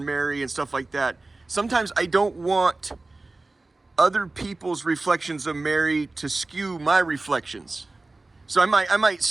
Mary and stuff like that. Sometimes I don't want other people's reflections of Mary to skew my reflections. So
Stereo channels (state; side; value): quieter; left; 3.2 dB